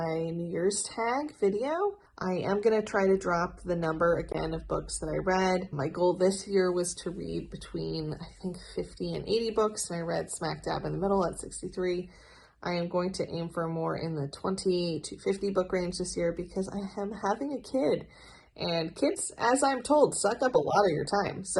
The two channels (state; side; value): identical; both; correlation 1.00